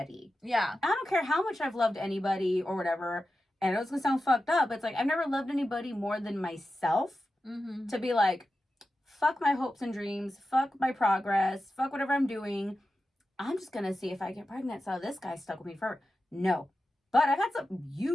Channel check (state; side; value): normal; both; correlation 0.92